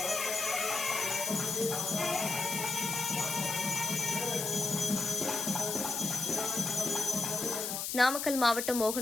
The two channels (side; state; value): left; noise; hiss, 3 dB below the sound